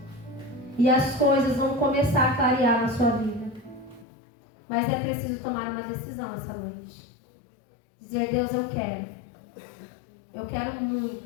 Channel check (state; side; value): drops out; right; at 4.0 s